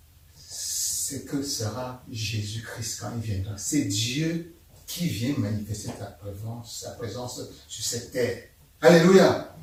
ce que sera Jésus-Christ quand il viendra. C'est Dieu qui vient manifester sa présence sur cette terre. Alléluia.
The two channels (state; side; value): identical; both; correlation 1.00